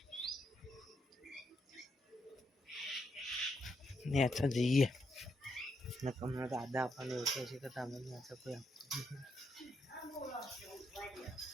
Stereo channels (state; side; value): normal; both; correlation 0.79